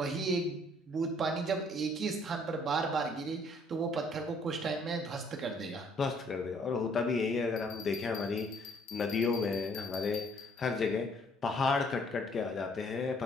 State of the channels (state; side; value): normal; both; correlation 0.62